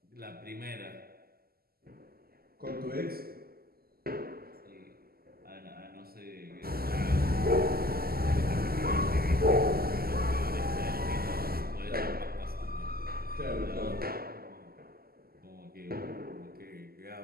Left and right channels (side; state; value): left; late; 0.45 ms